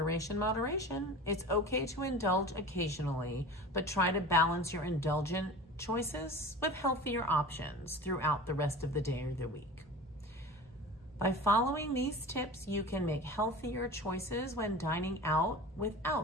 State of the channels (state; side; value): normal; both; correlation 0.35